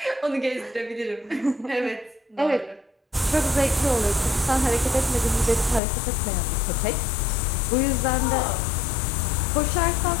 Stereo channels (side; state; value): right; drops out; at 5.8 s